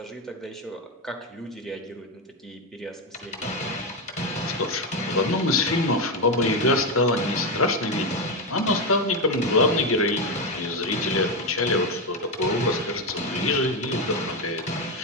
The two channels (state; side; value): normal; both; correlation 0.10